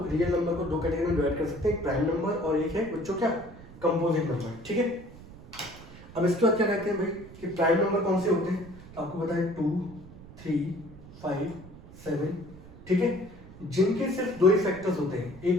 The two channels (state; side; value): noise; right; rumble, 18 dB below the sound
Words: रियल नंबर को दो कैटेगरी में डिवाइड कर सकते हैं, एक प्राइम नंबर और एक है बच्चों क्या, कंपोजिट नंबर। ठीक है, अब इसके बाद क्या कहते हैं भाई कि प्राइम नंबर कौन से होते हैं, तो आपको पता है 2, 3, 5, 7। ठीक है, जिनके सिर्फ दो ही फैक्टर्स होते हैं,